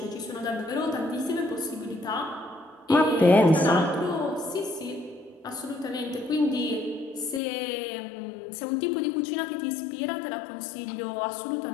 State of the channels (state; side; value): drops out; right; at 7.4 s